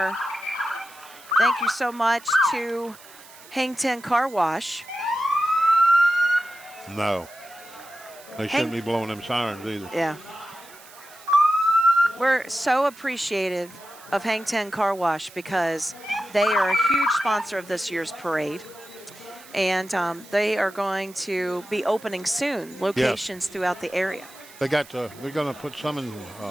Thank you so much to Hang 10 Car Wash. No. They shouldn't be blowing them sirens either. Yeah. We're so appreciative of Hang 10 Car Wash because they are a huge sponsor of this year's parade. And they are going to be opening soon, locations throughout the area. They're going to put some in,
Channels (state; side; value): noise; right; hiss, 21 dB below the sound